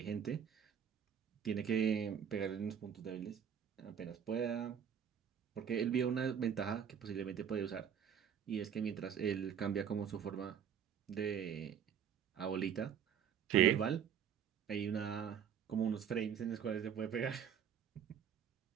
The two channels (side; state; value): left; quieter; 8.4 dB